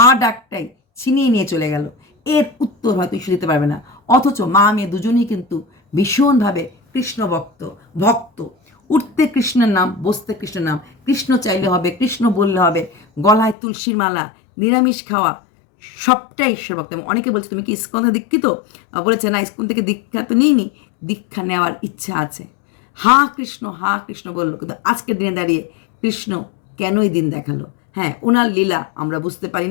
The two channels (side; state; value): right; drops out; at 13.6 s